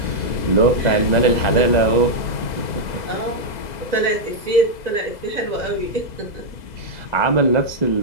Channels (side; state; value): right; late; 2.0 ms